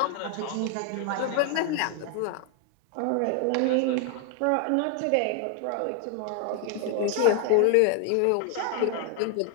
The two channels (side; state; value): both; different; correlation 0.00